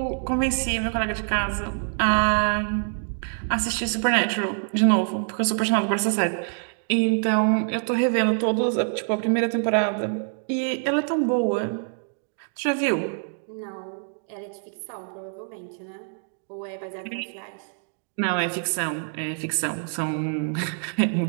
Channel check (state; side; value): silent; left; digital silence